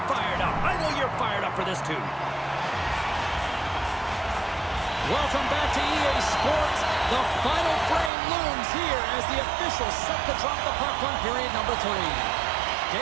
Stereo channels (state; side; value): drops out; left; at 8.1 s